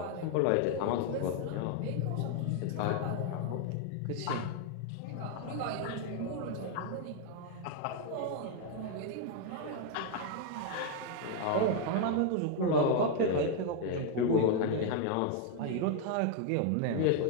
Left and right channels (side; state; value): both; different; correlation 0.00